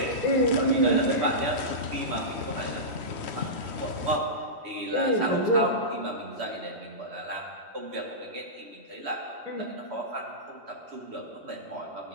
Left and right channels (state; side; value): late; left; 3.1 ms